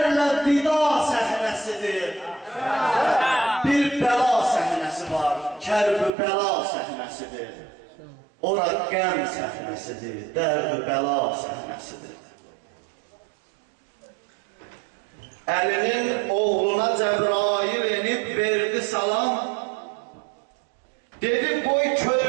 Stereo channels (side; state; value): left; drops out; at 6.1 s